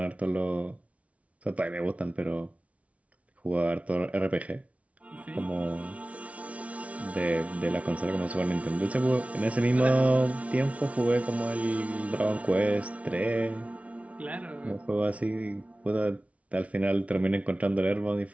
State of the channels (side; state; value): left; late; 0.065 ms